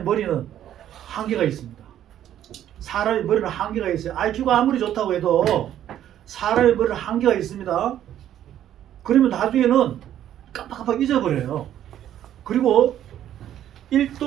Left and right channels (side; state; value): left; quieter; 11.2 dB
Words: 머리는 한계가 있습니다. 사람의 머리는 한계가 있어요. IQ가 아무리 좋다고 해도 사람의 머리는 한계가 있습니다. 그러면 나중에는 깜빡깜빡 잊어버려요. 그리고